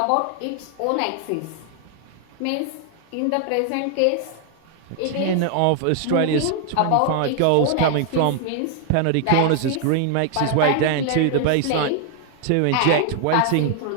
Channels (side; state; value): both; different; correlation 0.00